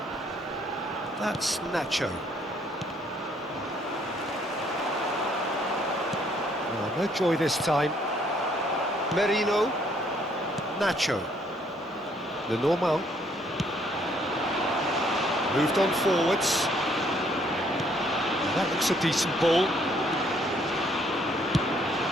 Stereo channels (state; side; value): normal; both; correlation 0.66